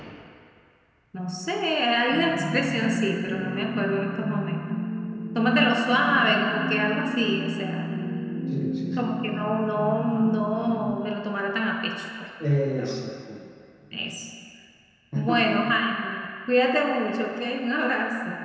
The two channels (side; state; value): both; identical; correlation 1.00